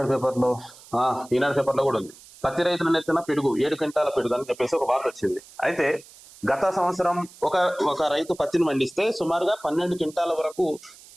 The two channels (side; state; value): right; noise; hiss, 22 dB below the sound